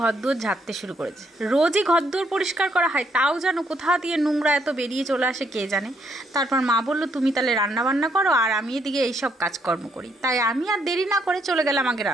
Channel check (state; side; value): normal; both; correlation 0.72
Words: ঘরদোর ঝাড়তে শুরু করেছে। রোজই ঘরদোর পরিষ্কার করা হয়, তাও যেন কোথা দিয়ে নোংরা এত বেরিয়ে চলে আসে কে জানে। তারপর মা বলল তুমি তাহলে রান্নাবান্না করো আর আমি এদিকে এইসব কাজকর্ম করি। তাই আমি আর দেরি না করে চলে গেলাম আগে